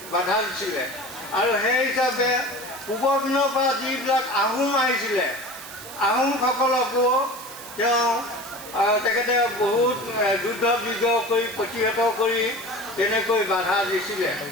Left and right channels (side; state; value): right; noise; hiss, 14 dB below the sound